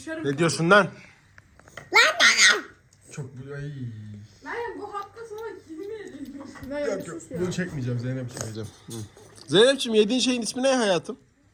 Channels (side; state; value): both; identical; correlation 1.00